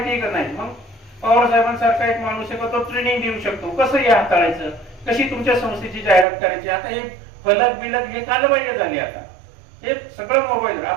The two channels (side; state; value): left; drops out; at 6.2 s